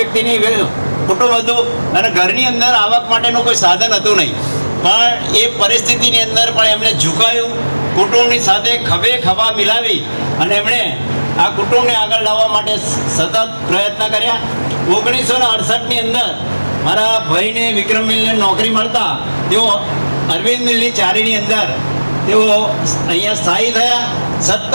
કુટુંબ હતું અને ઘરની અંદર આવક માટેનું કોઈ સાધન હતું નહીં. પણ એ પરિસ્થિતિની અંદર પણ એમણે ઝુકાયું, કુટુંબની સાથે ખભે ખભા મિલાવી અને એમણે આ કુટુંબને આગળ લાવવા માટે સતત પ્રયત્ન કર્યા. 1968ની અંદર મારા ભાઈને વિક્રમ મિલને નોકરી મળતા તેઓ અરવિંદ મિલની ચારીની અંદર તેઓ અહીંયા સ્થાયી થયા.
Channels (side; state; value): both; inverted; correlation -1.00